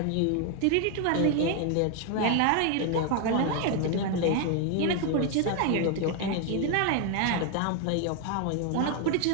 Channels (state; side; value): different; both; correlation 0.00